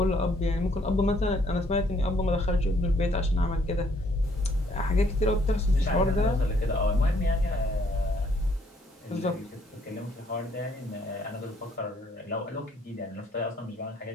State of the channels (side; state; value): both; normal; correlation 0.66